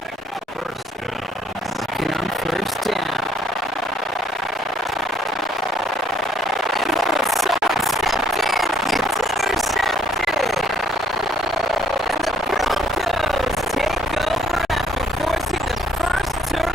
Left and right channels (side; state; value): both; normal; correlation 0.65